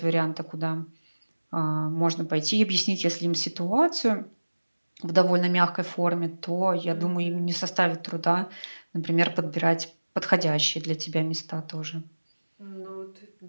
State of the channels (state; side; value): inverted; both; correlation -1.00